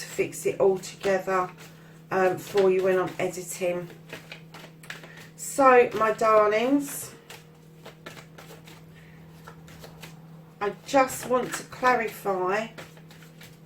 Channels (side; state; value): both; identical; correlation 1.00